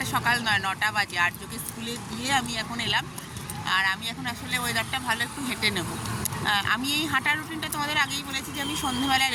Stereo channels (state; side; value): identical; both; correlation 1.00